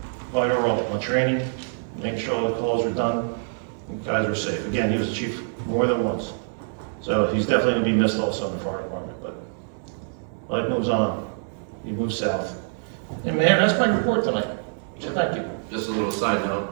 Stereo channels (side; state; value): left; silent; 61 dB below the other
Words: Vital role on training, making sure all the calls were done, and guys were safe. Again, he was a chief more than once. So he's definitely going to be missed also in the fire department, but life moves on. He moves south. And Mayor, that's my report tonight. So thank you. Just a little side